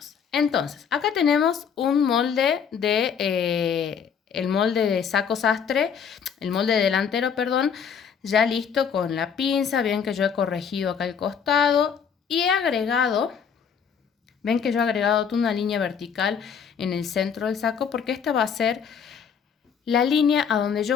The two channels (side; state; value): right; quieter; 7.1 dB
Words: Entonces, acá tenemos un molde el molde de saco sastre, el molde delantero, perdón, ya listo con la pinza. Ven que yo he corregido acá el costado y he agregado, ven que yo he agregado una línea vertical en el centro del saco porque esta va a ser la línea a donde